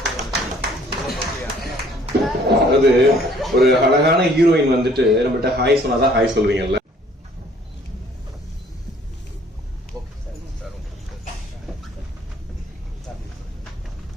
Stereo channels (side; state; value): both; normal; correlation 0.58